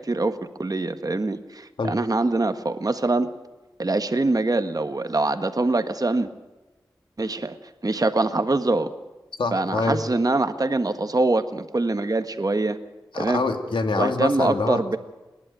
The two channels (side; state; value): both; normal; correlation 0.80